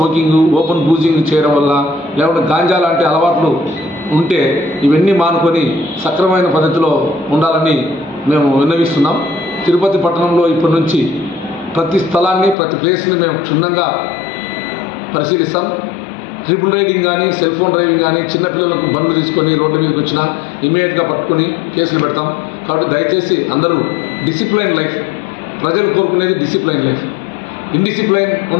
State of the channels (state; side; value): drops out; right; at 12.6 s